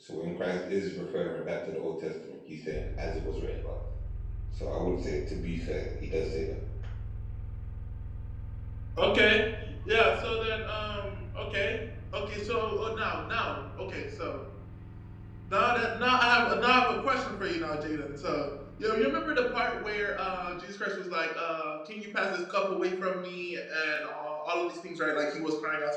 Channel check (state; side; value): identical; both; correlation 1.00